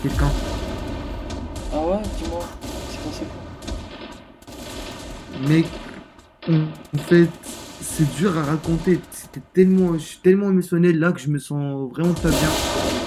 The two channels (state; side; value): identical; both; correlation 1.00